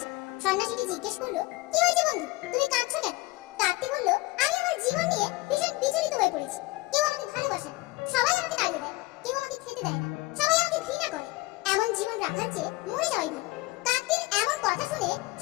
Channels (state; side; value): quieter; right; 21.5 dB